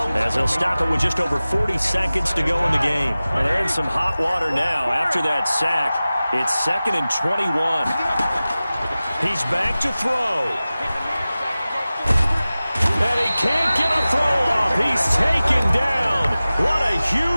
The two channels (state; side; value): inverted; both; correlation -0.97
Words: as they'll stop it with just over 40 seconds to go in the game. And they're in some hot water now after that sack. It's 2nd and 21. He's back to throw. And he can't get a throw off. He's taken down. What a